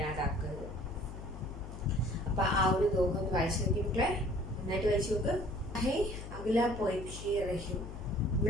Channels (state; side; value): noise; left; hum, 10 dB below the sound